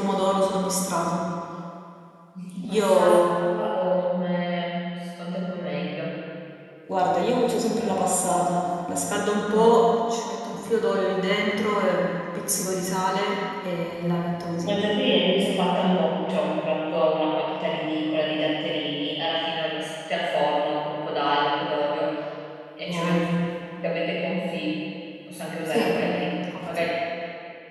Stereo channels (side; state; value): both; identical; correlation 1.00